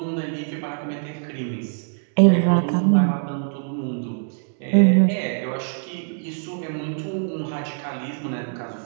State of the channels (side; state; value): left; silent; 61 dB below the other